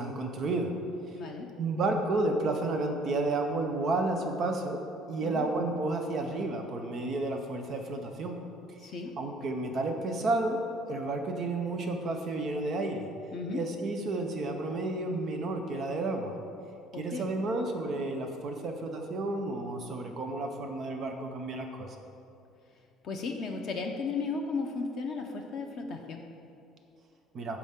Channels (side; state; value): both; normal; correlation 0.57